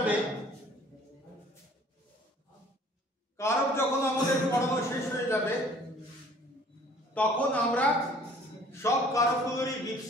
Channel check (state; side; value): normal; both; correlation 0.53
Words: কারক যখন আমাদের পড়ানো শেষ হয়ে যাবে তখন আমরা সব কারকগুলোরই